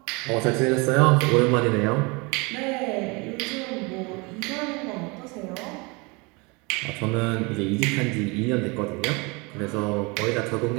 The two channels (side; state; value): left; quieter; 28.0 dB